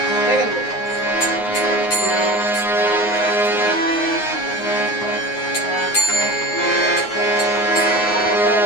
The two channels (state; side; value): late; right; 9.5 ms